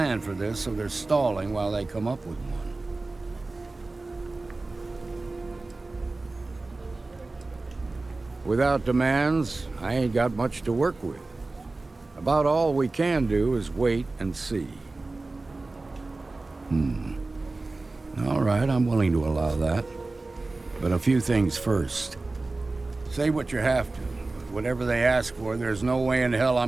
for this, so they're stalling while they come up with one. Without demands, I ain't got much to work with. About all we can do is wait and see. All right, I'm willing to allow that. But a few things first. Say what you have to. Whatever they ask for, there's no way in hell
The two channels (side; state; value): left; quieter; 3.3 dB